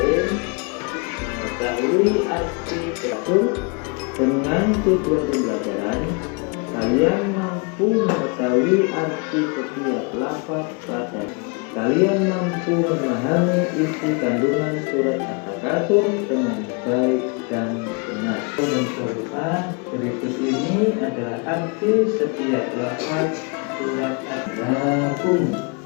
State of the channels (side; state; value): right; quieter; 33.3 dB